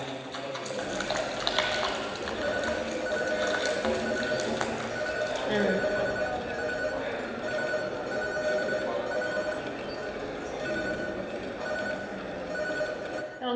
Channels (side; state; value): both; identical; correlation 1.00